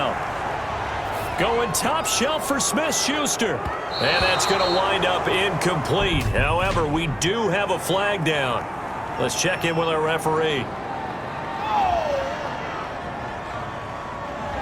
Going top shelf for Smith-Schuster. And that's going to wind up incomplete. However, we do have a flag down. Let's check in with our referee.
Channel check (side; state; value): both; identical; correlation 1.00